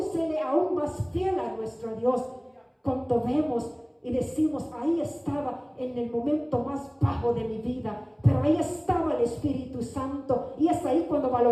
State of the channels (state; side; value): identical; both; correlation 1.00